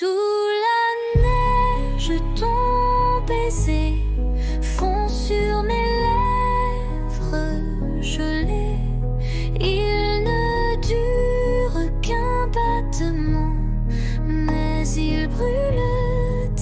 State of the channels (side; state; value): both; identical; correlation 1.00